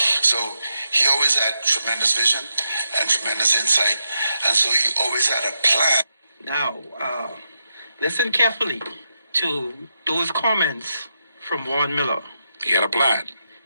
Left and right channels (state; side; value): inverted; both; correlation -0.85